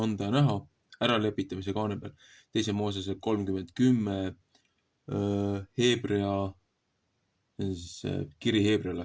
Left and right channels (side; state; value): both; identical; correlation 1.00